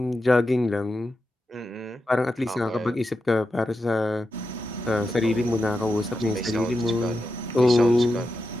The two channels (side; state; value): both; normal; correlation 0.89